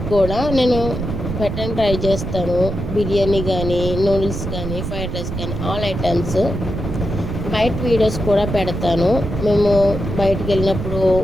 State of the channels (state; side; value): noise; right; rumble, 5 dB below the sound